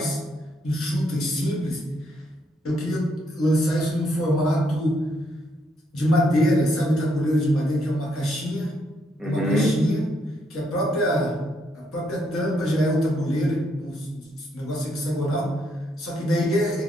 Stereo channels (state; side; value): normal; both; correlation 0.75